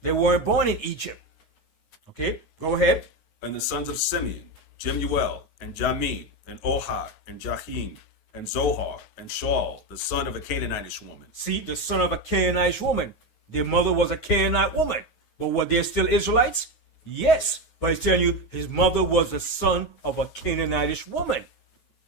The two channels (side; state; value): right; late; 9.5 ms